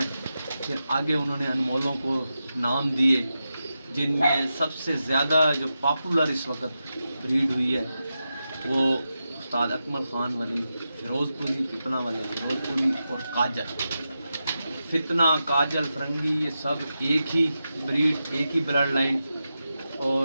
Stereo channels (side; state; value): both; inverted; correlation -0.90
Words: फिर आगे उन्होंने अनमोलों को नाम दिए, जिनमें सबसे ज़्यादा जो पॉपुलर इस वक्त ब्रीड हुई है वो उस्ताद अकमल ख़ान वाली फ़िरोज़पुरी, पिपला वाले फ़िरोज़पुरी और काजल। फितना, काजल, फरंगी, ये सब एक ही ब्रीड, एक ही ब्लड लाइन। और